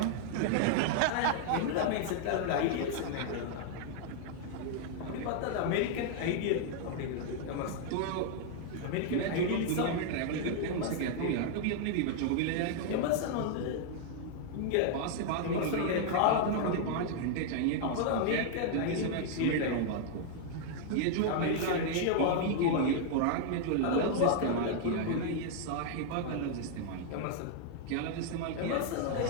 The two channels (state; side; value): different; both; correlation 0.00